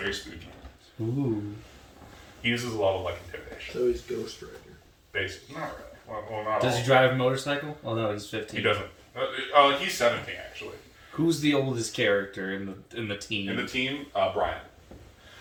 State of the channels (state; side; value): identical; both; correlation 1.00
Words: spooky. Ooh. He uses a lot of like intimidation. So he's Ghost Rider. Basically, not really. Well, not Does all. he drive a motorcycle? Oh no, he's 15. He doesn't. He's 17 actually. Who's the oldest character in the team? In the team, Brian.